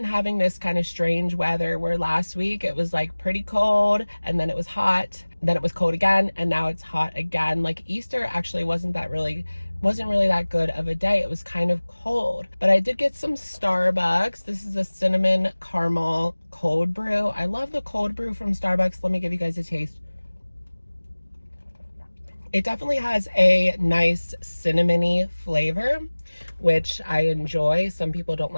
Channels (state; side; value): inverted; both; correlation -1.00